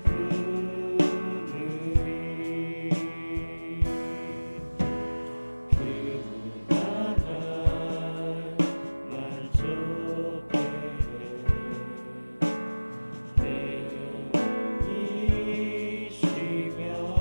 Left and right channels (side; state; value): both; inverted; correlation -1.00